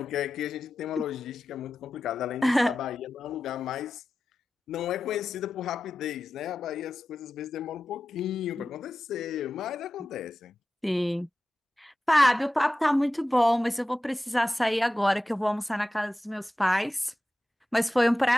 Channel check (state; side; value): normal; both; correlation 0.93